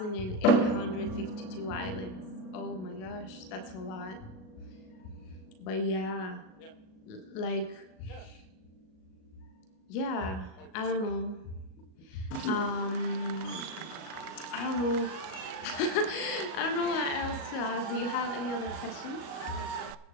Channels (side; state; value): right; late; 37 ms